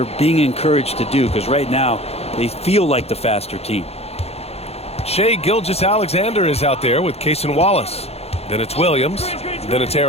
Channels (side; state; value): right; late; 0.30 ms